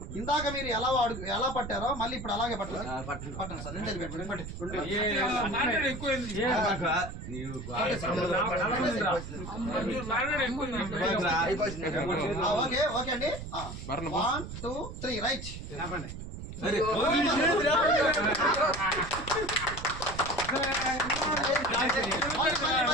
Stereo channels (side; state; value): right; noise; rumble, 9 dB below the sound